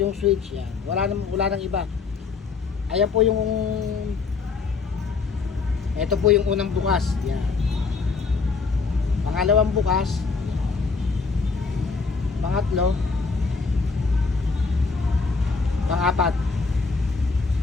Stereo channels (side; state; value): right; quieter; 4.6 dB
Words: switch. Yan. Wala nang iba. Ayan po yung ito po yung unang bukas. Yan. Pangalawang bukas. Pangatlo. Pang-apat.